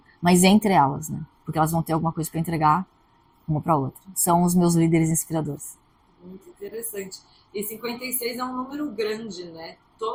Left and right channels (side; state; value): both; identical; correlation 1.00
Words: mas entre elas, né? Porque elas vão ter alguma coisa para entregar uma para outra. São os meus líderes inspiradores. Muito interessante. E 56 é um número grande, né?